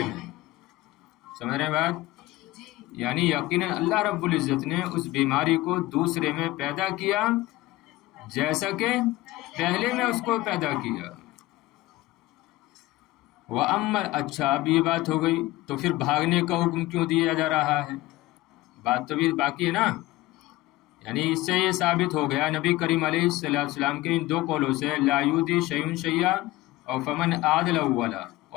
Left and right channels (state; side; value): quieter; right; 17.8 dB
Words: میں. سمجھ رہے ہیں بات؟ یعنی یقیناً اللہ رب العزت نے اس بیماری کو دوسرے میں پیدا کیا جیسا کہ پہلے میں اس کو پیدا کیا. اچھا اب یہ بات ہو گئی تو پھر بھاگنے کا حکم کیوں دیا جا رہا ہے؟ بات تو بھی باقی ہے نا. یعنی اس سے یہ ثابت ہو گیا نبی کریم علیہ السلام کے ان دو قولوں سے لا یؤذی شیء شیئا اور فمن عادل اولا،